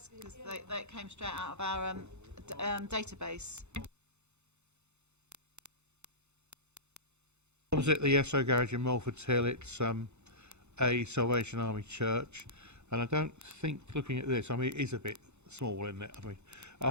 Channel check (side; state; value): left; late; 0.82 ms